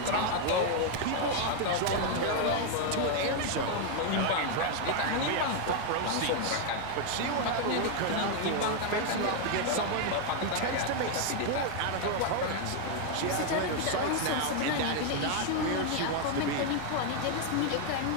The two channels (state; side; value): different; both; correlation 0.01